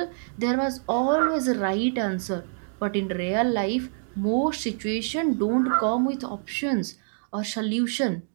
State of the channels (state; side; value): silent; left; digital silence